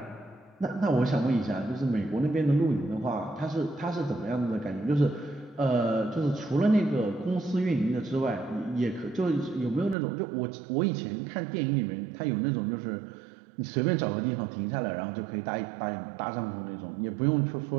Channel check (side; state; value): left; drops out; at 10.0 s